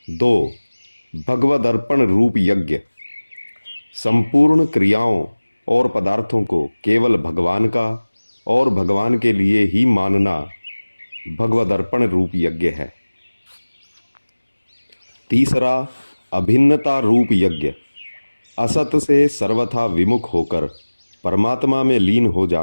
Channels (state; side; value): inverted; both; correlation -1.00